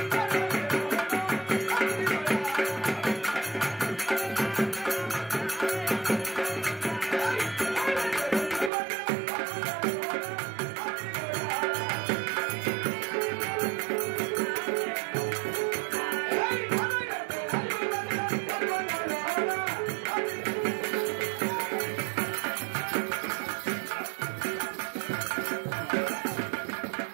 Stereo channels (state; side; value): drops out; left; at 8.7 s